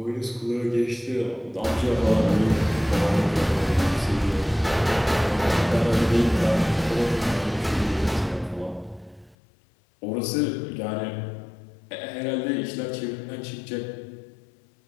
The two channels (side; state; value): right; drops out; at 9.3 s